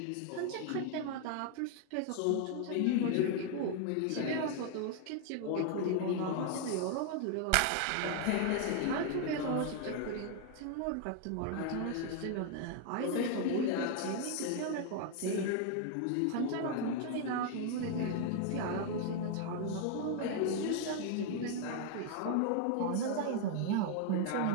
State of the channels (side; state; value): both; different; correlation 0.00